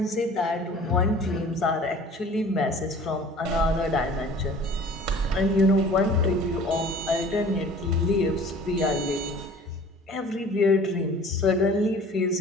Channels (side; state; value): both; normal; correlation 0.47